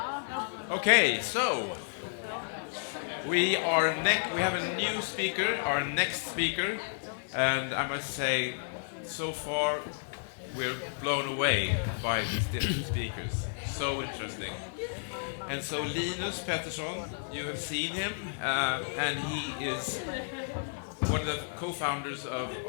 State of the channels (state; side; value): silent; right; 57 dB below the other